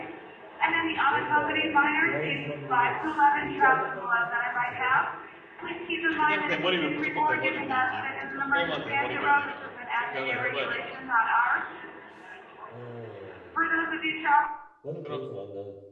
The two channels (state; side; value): identical; both; correlation 1.00